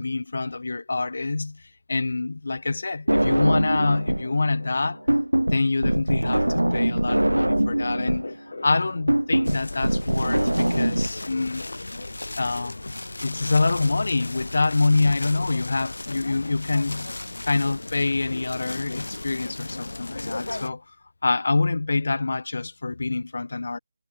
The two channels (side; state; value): both; inverted; correlation -0.98